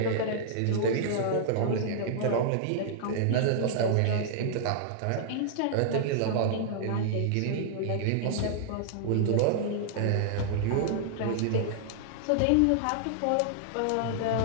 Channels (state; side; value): different; both; correlation -0.01